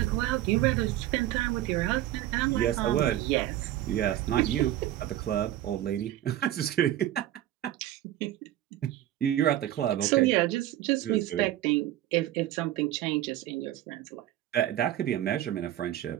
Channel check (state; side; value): quieter; left; 13.4 dB